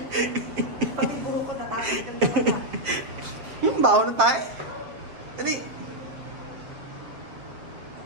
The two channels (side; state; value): left; late; 7.6 ms